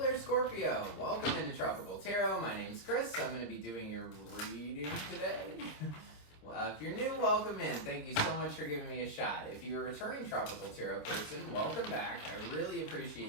Scorpio. Welcome into Tropical Tarot. My name's Chris. I'm going to be doing your reading today. If you're new, welcome in. Thank you so much for giving me a shot. If you're a returning Tropical Tarot person, welcome back. I really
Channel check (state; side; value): late; right; 26 ms